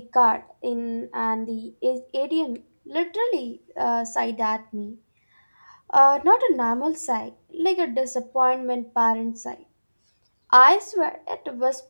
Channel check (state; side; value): inverted; both; correlation -1.00